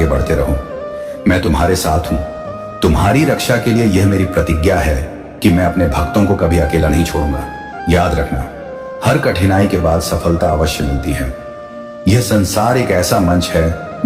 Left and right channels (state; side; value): identical; both; correlation 1.00